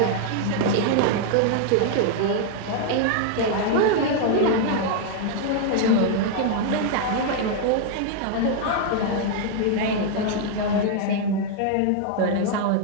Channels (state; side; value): different; both; correlation 0.00